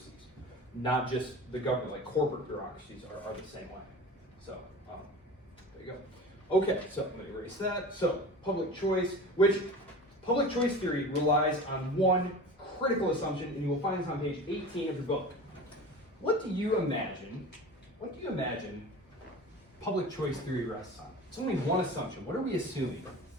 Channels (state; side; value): normal; both; correlation 0.35